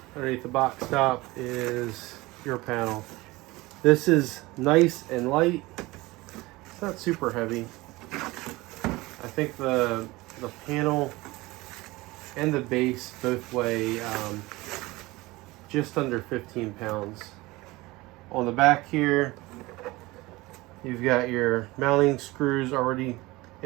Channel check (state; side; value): quieter; left; 21.0 dB